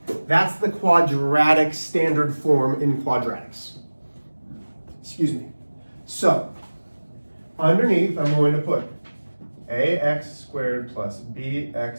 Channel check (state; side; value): inverted; both; correlation -1.00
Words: That's the quadratic standard form in quadratics. Excuse me. So, underneath, I'm going to put ax squared plus